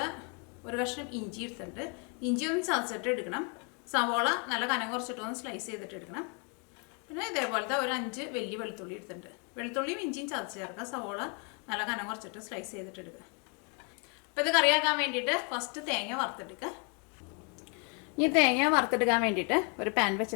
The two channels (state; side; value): quieter; right; 36.2 dB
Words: ഒരു കഷ്ണം ഇഞ്ചി എടുത്തിട്ടുണ്ട്. ഇഞ്ചി ഒന്ന് ചതച്ചിട്ട് എടുക്കണം. സവോള നല്ല കനം കുറച്ചിട്ടൊന്ന് സ്ലൈസ് ചെയ്തിട്ട് എടുക്കണം. പിന്നെ ഇതേപോലത്തെ ഒരു 5 വലിയ വെളുത്തുള്ളി എടുത്തിട്ടുണ്ട്. വെളുത്തുള്ളിയും ഇഞ്ചിയും ചതച്ച് ചേർക്കുക. സവോള നല്ല കനം കുറച്ചിട്ട് സ്ലൈസ് ചെയ്തിട്ട് എടുക്കുക. അപ്പോൾ ഇത് കറിയാക്കാൻ വേണ്ടിയിട്ട് ഫസ്റ്റ് തേങ്ങ വറുത്തെടുക്കുക. ഈ തേങ്ങ വറുത്തെടുക്കാൻ വേണ്ടിയിട്ട് ഒരു പാൻ